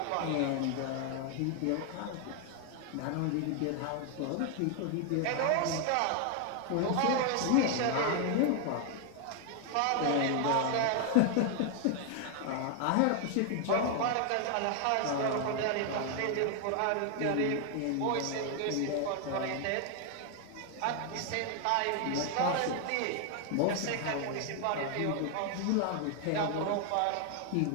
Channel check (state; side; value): different; both; correlation 0.00